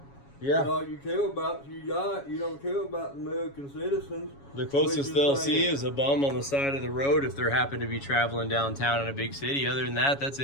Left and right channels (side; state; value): right; late; 7.2 ms